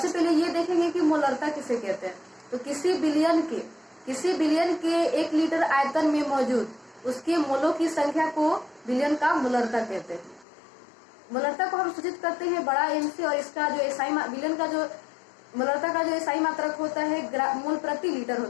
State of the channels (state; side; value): drops out; right; at 10.5 s